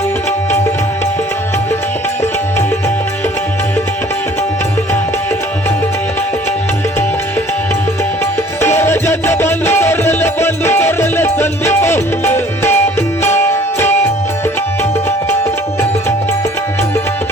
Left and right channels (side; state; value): both; normal; correlation 0.53